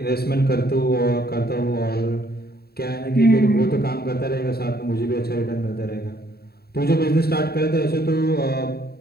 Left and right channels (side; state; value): right; late; 0.45 ms